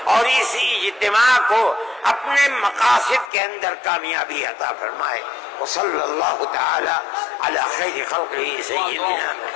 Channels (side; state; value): right; drops out; at 3.3 s